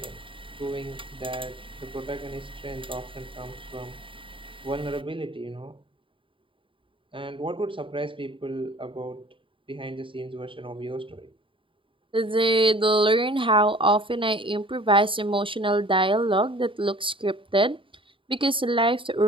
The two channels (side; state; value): left; late; 0.25 ms